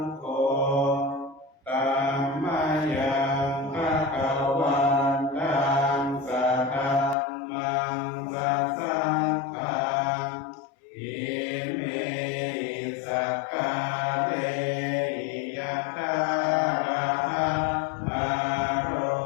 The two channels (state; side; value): drops out; right; at 7.2 s